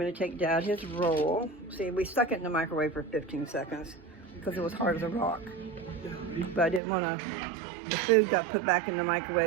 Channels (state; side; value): drops out; left; at 6.8 s